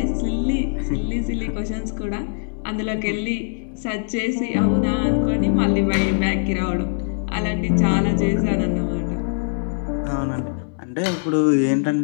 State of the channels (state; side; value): silent; right; 60 dB below the other